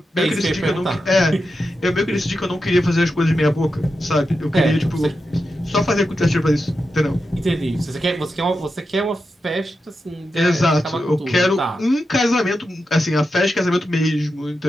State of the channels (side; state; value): both; normal; correlation 0.89